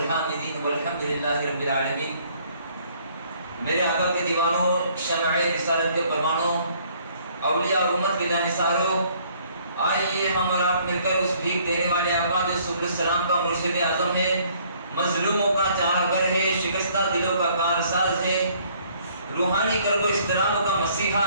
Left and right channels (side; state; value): both; inverted; correlation -0.62